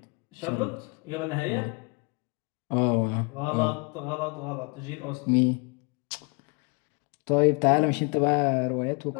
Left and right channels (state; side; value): quieter; right; 31.7 dB